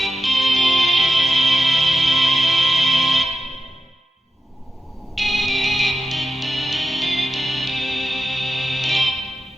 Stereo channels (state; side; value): normal; both; correlation 0.89